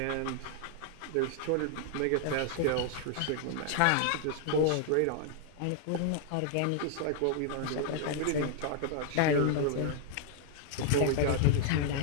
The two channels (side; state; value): both; different; correlation 0.00